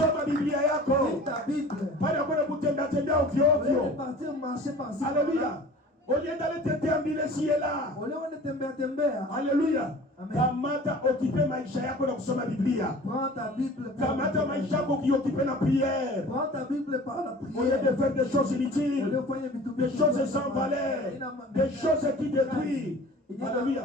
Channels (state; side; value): normal; both; correlation 0.44